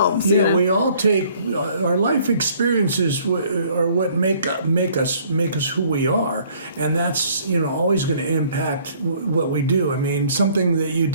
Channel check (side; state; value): both; inverted; correlation -0.59